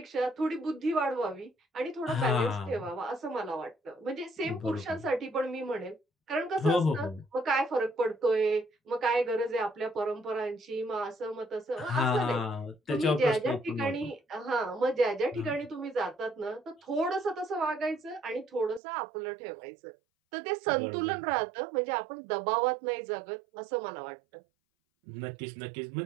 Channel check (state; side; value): drops out; left; at 18.8 s